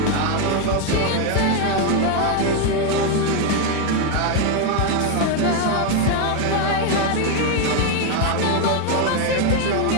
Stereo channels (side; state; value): both; different; correlation 0.01